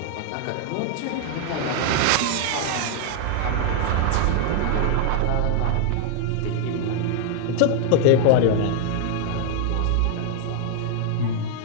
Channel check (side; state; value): both; different; correlation 0.00